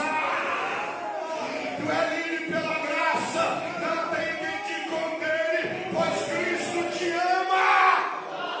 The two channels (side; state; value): both; identical; correlation 1.00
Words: Tu é livre pela graça, não tem quem te condene, pois Cristo te ama.